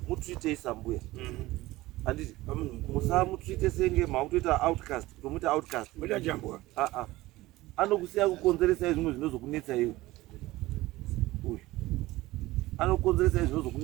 mutreatei sambuya handiti musamutreate senge makutoita outcast kutomuita outcast muita jambwa anokusiya kukonzeresa zvimwe zvinozokunetsai iwe uyu anokonzeresa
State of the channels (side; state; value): left; quieter; 18.3 dB